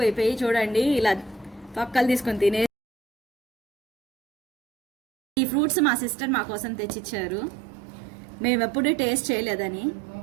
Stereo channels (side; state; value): left; drops out; at 2.7 s